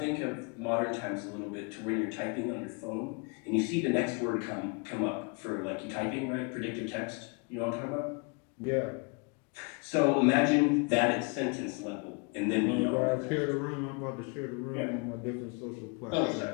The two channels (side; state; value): right; quieter; 33.7 dB